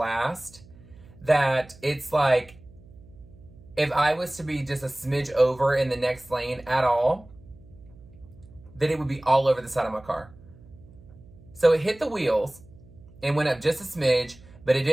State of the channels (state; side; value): noise; right; hum, 23 dB below the sound